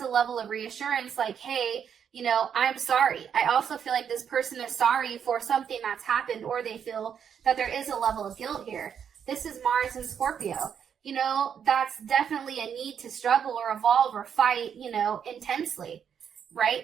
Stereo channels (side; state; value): left; quieter; 7.9 dB